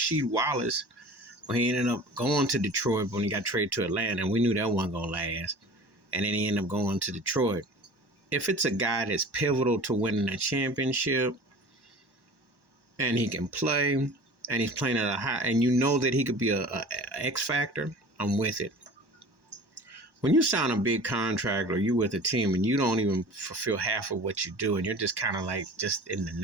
Wallace when he ended up going to Detroit when he got traded to Atlanta, and we knew that wasn't going to last. And then he ended up going to Detroit. If it's a guy that's pivotal to winning a championship and he can play and he's playing at a high, and you know that he could be a X factor, I'm with it. When you sign a big contract or you with a team and you don't even fulfill half of what you do and you're just kind of like just in the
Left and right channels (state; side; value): late; left; 1.1 ms